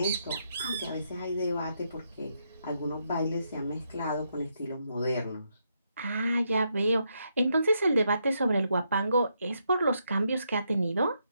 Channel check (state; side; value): inverted; both; correlation -0.79